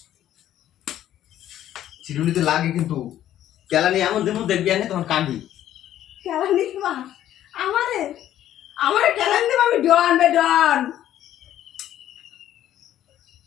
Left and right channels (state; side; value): quieter; right; 12.0 dB